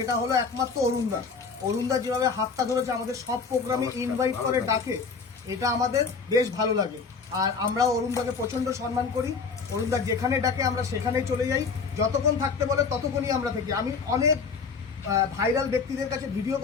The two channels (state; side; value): quieter; right; 5.1 dB